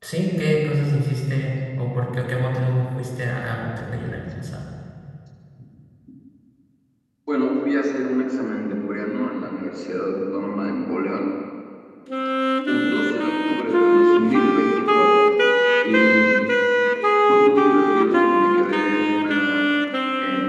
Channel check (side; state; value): both; identical; correlation 1.00